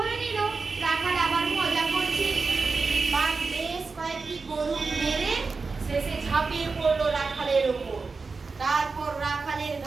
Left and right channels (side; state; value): left; quieter; 4.3 dB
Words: নিল রাখাল আবার মজা করছে। বাঘ বেশ কয়েকটি গরু মেরে শেষে ঝাঁপিয়ে পড়লো রাখালের উপর। তারপর রাখালের